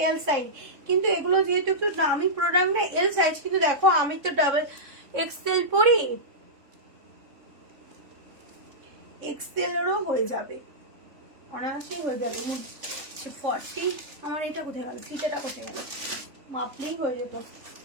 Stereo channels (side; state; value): left; late; 3.6 ms